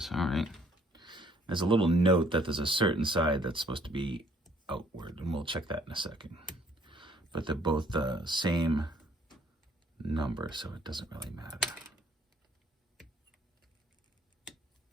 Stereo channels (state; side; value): normal; both; correlation 0.62